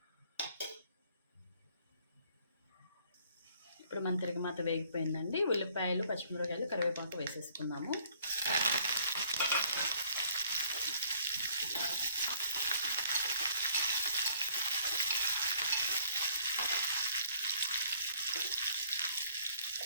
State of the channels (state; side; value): inverted; both; correlation -0.62